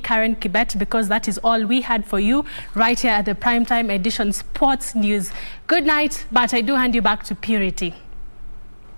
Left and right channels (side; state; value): both; inverted; correlation -1.00